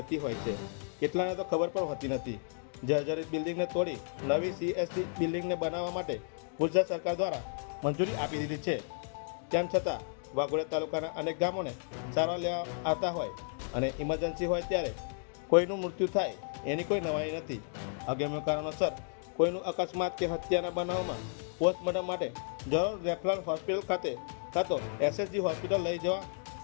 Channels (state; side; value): silent; right; digital silence